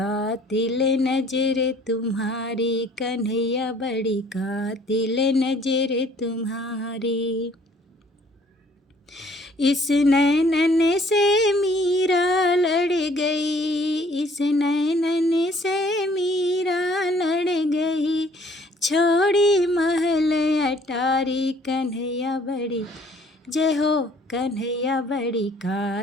नजर तुम्हारी, कन्हैया बड़ी कातिल नजर तुम्हारी। इस नैनन से मीरा लड़ गई, इस नैनन से मीरा लड़ गई, छोड़ी महल अटारी। कन्हैया बड़ी, जय हो कन्हैया बड़ी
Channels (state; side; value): normal; both; correlation 0.58